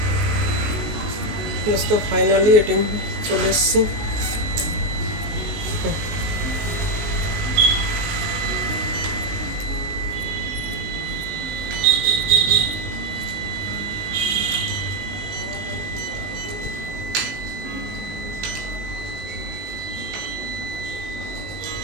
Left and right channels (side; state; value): left; late; 19 ms